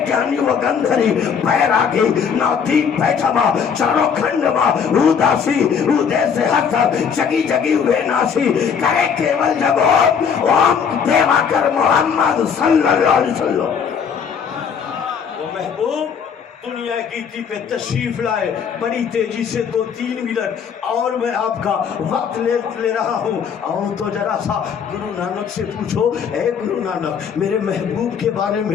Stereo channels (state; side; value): quieter; right; 6.9 dB